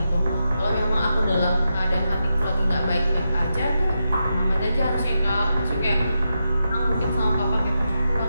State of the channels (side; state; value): both; inverted; correlation -0.86